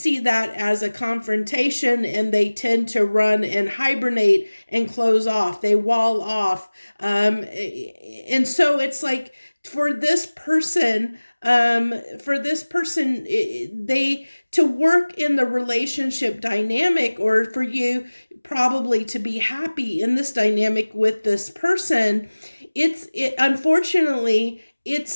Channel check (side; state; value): both; inverted; correlation -1.00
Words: that as a confrontation, and they tend to run and hibernate and close off. They wall off. And so it's like, for this person, they to work in the relationship dynamic, or for you probably to be happy in this dynamic with this person, unfortunately,